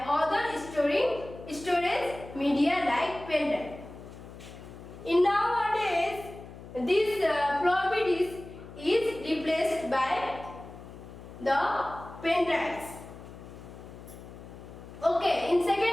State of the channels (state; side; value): noise; left; hum, 15 dB below the sound